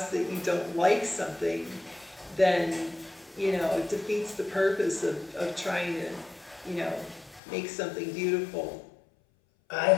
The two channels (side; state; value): right; drops out; at 7.4 s